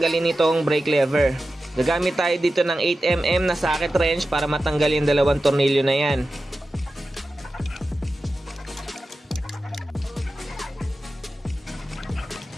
itong brake lever. Gagamit tayo dito ng 8mm na socket wrench para matanggal yung dalawang tornilyo na yan.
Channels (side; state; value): both; normal; correlation 0.93